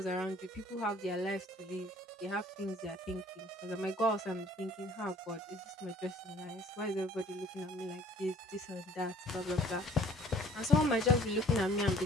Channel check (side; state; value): both; normal; correlation 0.56